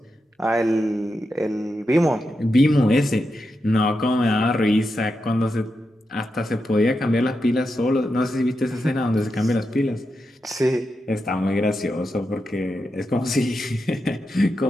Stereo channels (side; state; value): both; normal; correlation 0.87